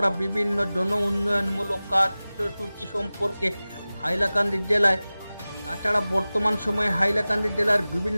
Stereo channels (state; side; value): inverted; both; correlation -0.97